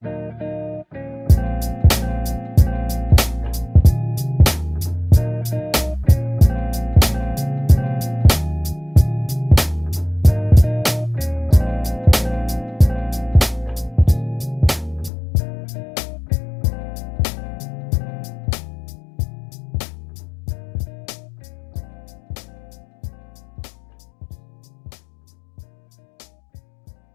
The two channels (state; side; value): drops out; right; at 15.1 s